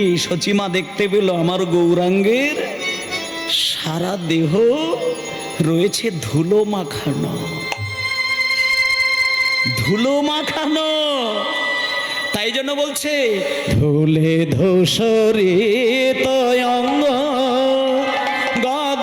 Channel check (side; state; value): both; identical; correlation 1.00